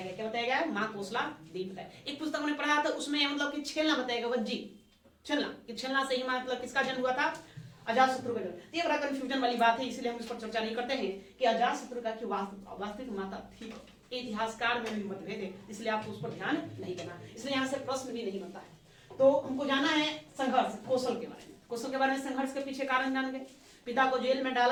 गया। क्या बताया गया? महाकोशला देवी बताया। एक पुस्तक हमने पढ़ा था, उसमें मतलब कि छेलना बताया गया, वज्जी छेलना से ही मतलब किसका जन्म हुआ था? अजातशत्रु का जन्म। ये बड़ा कंफ्यूजन वाली बात है, इसलिए हम इस पर चर्चा नहीं करते हैं कि अजातशत्रु का की वास्तविक माता थी। इतिहासकार में भी मतभेद है, इसलिए आपको उस पर ध्यान नहीं देना। इसलिए यहाँ से प्रश्न भी नहीं बनता है। तो हमको जाना है संघर्ष, कौशल के बारे में। कौशल के बारे में संघर्ष के पीछे कारण जान गए। पिता को जेल में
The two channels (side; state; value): both; identical; correlation 1.00